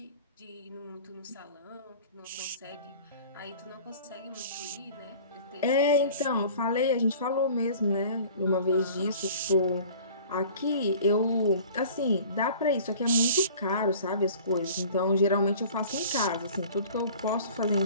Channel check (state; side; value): inverted; both; correlation -0.46